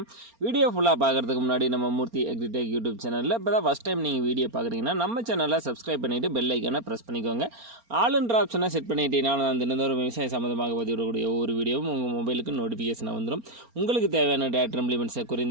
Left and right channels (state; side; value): late; left; 4.3 ms